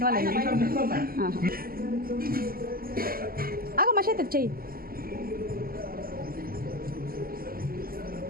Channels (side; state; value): left; late; 0.42 ms